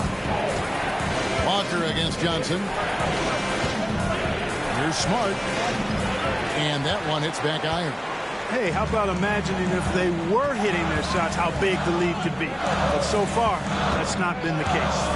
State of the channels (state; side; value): identical; both; correlation 1.00